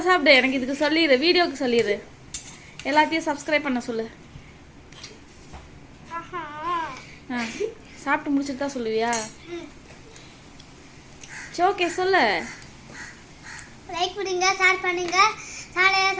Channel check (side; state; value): both; identical; correlation 1.00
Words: சாப்பிடு. எனக்கு இதுக்கு சொல்லிடு, வீடியோக்கு சொல்லிடு. எல்லாத்தையும் சப்ஸ்கிரைப் பண்ண சொல்லு. சாப்பிட்டு முடிச்சுட்டு தான் சொல்லுவியா? சரி ஓகே சொல்லு. லைக் பண்ணுங்க, ஷேர் பண்ணுங்க, சேனலை